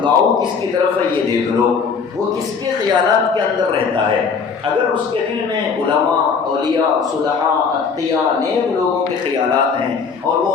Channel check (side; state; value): right; quieter; 5.6 dB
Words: کس کی طرف ہے یہ دیکھ لو، وہ کس کے خیالات کے اندر رہتا ہے۔ اگر اس کے دل میں علماء، اولیاء، صلحاء، اتقیاء، نیک لوگوں کے خیالات ہیں اور وہ